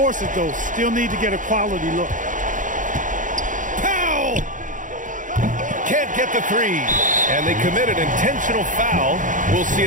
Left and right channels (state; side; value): late; left; 0.38 ms